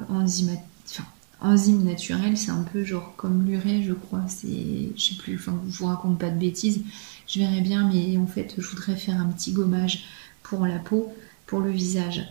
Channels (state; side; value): silent; left; 61 dB below the other